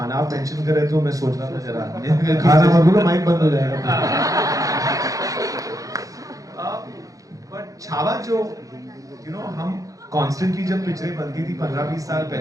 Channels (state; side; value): late; left; 0.17 ms